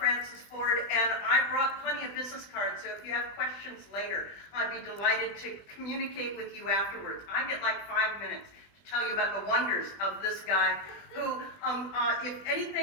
Ford, and I brought plenty of business cards, so if you have questions later, I'd be delighted to communicate with you afterwards. I get like 5 minutes to tell you about the wonders of this guy who, if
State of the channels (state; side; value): late; right; 20 ms